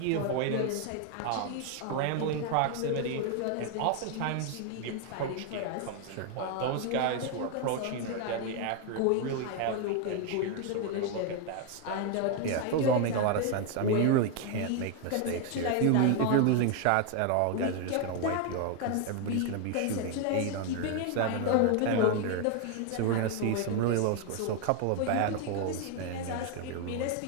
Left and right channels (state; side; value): different; both; correlation 0.01